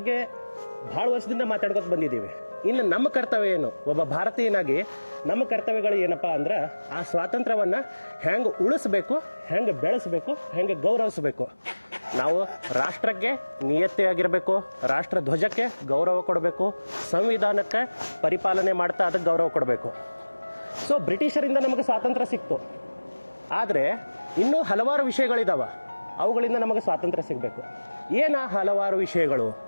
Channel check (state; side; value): inverted; both; correlation -1.00